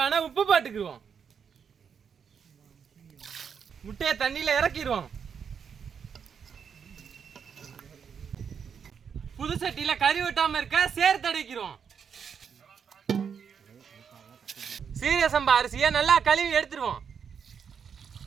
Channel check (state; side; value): quieter; left; 7.0 dB